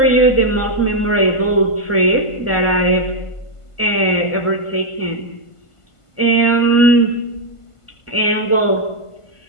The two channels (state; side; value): late; right; 1.5 ms